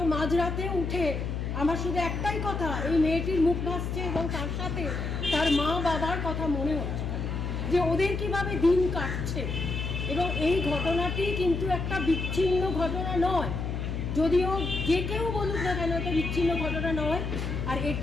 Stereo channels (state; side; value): noise; left; hum, 3 dB below the sound